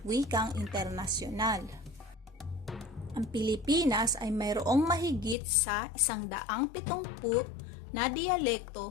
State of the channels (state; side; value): drops out; right; at 5.4 s